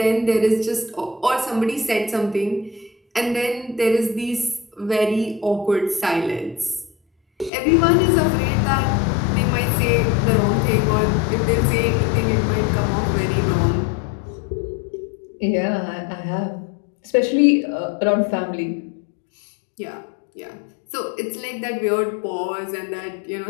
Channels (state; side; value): drops out; right; at 7.5 s